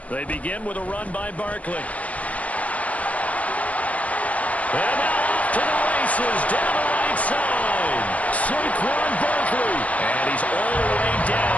They begin with a run by Barkley. And now off to the races, down the right side. Saquon Barkley. And he's all the way down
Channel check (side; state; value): right; late; 0.068 ms